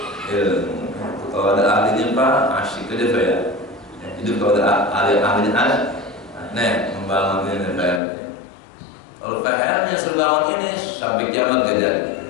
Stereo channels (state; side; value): drops out; right; at 8.0 s